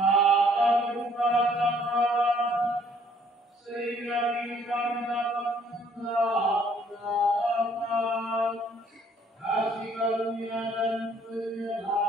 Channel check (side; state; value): both; normal; correlation 0.62